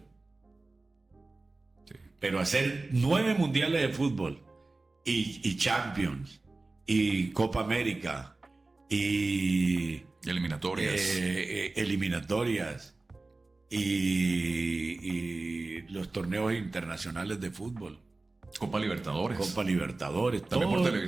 Sí. Pero hacer 9 mundiales de fútbol y Champions y Copa América y Eliminatorias. eliminatorias y los torneos internacionales de fútbol, Copa Libertadores. Copa Libertadores, También por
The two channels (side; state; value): left; quieter; 3.3 dB